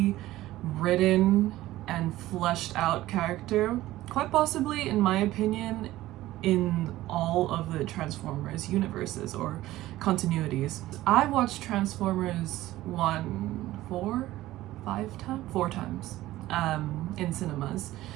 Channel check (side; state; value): left; quieter; 16.0 dB